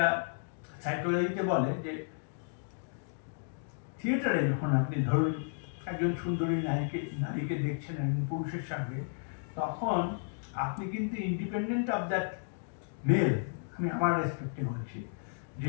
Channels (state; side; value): silent; right; digital silence